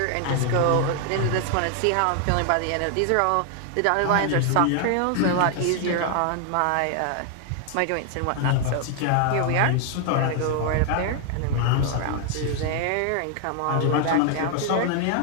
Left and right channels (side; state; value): both; different; correlation 0.00